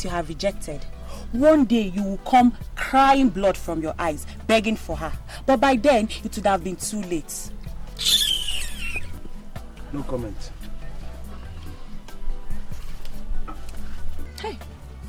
you have rejected? One day you will come crying blood from your eyes, begging for her. But by then, it would have been too late. No comment. Hey,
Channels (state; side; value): identical; both; correlation 1.00